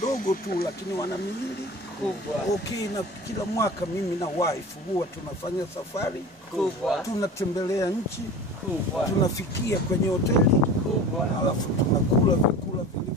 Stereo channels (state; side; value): normal; both; correlation 0.36